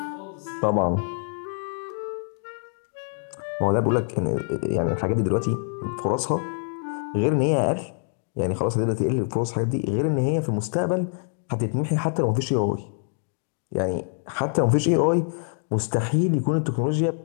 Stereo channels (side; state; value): right; silent; 62 dB below the other